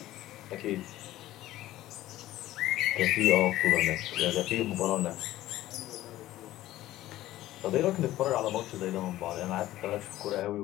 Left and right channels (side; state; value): right; quieter; 15.2 dB